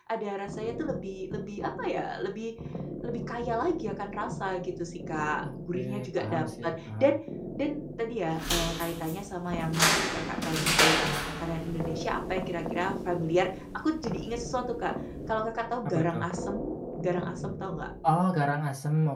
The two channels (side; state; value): both; identical; correlation 1.00